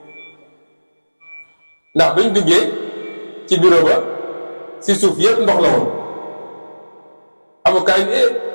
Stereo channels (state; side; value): inverted; both; correlation -1.00